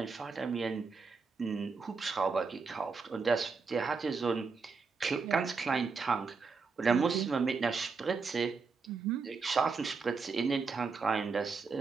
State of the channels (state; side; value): quieter; left; 4.8 dB